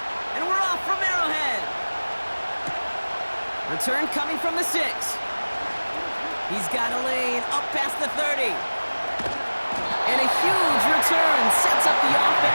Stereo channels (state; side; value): inverted; both; correlation -1.00